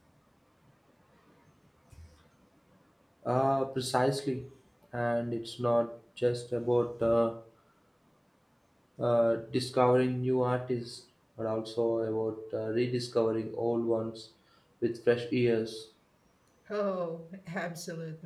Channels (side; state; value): both; identical; correlation 1.00